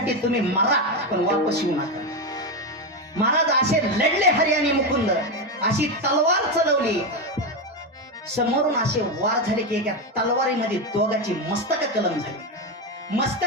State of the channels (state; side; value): normal; both; correlation 0.11